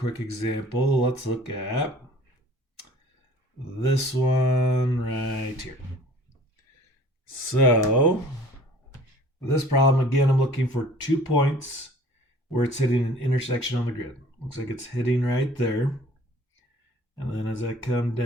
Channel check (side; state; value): both; normal; correlation 0.50